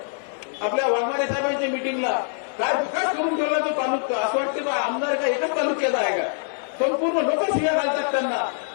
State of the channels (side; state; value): right; silent; 63 dB below the other